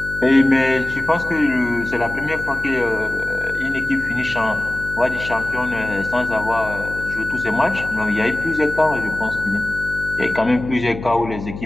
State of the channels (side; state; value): left; noise; hum, 11 dB below the sound